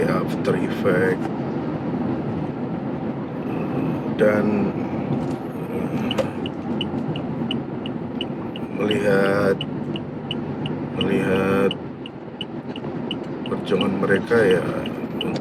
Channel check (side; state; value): both; identical; correlation 1.00